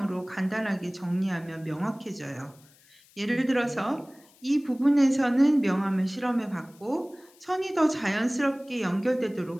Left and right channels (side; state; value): left; noise; hiss, 28 dB below the sound